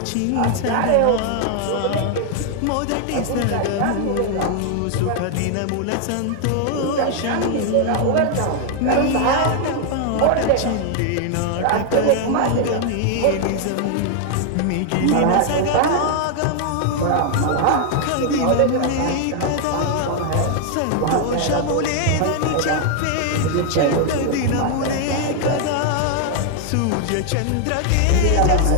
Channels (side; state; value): both; different; correlation 0.00